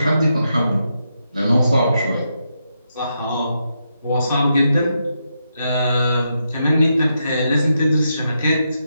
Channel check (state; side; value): inverted; both; correlation -0.83